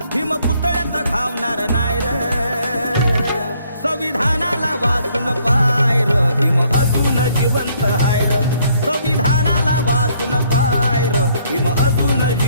भीम पुतळ्यात घावणार नाय र संविधानाला वाचून पाय र भीम अजून जिवंत हाय र संविधानाला वाचून पाय र भीम अजून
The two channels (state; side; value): inverted; both; correlation -0.66